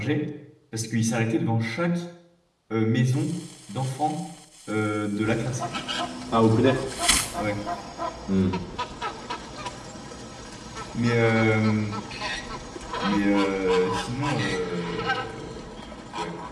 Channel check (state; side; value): identical; both; correlation 1.00